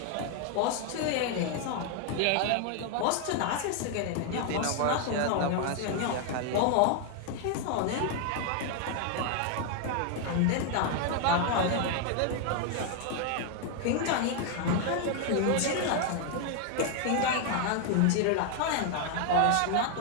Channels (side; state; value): both; different; correlation 0.00